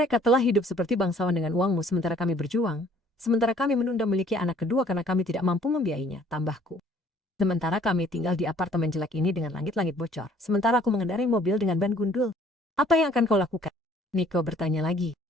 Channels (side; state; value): both; normal; correlation 0.58